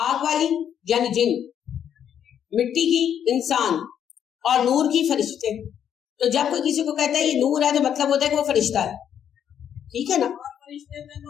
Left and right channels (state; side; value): quieter; right; 9.1 dB